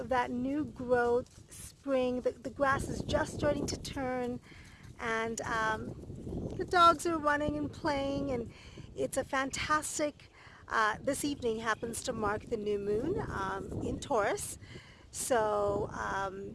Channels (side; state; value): both; identical; correlation 1.00